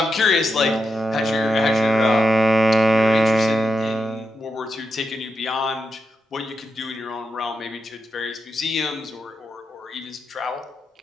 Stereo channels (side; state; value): both; normal; correlation 0.86